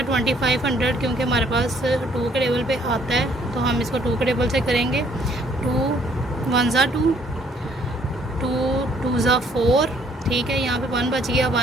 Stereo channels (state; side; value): normal; both; correlation 0.64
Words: 2500 क्योंकि हमारे पास 2 के टेबल पे आता है तो हम इसको 2 के टेबल से करेंगे। 2 1 2, 2 2 4। ठीक है। यहाँ पे 1 बच गया,